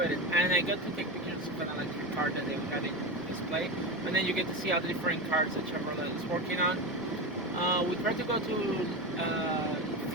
it, and I got to take pictures of an electric car that they had in display, and then you get to see all the different cars that Chevrolet is working on. We tried to go to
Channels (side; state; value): both; normal; correlation 0.20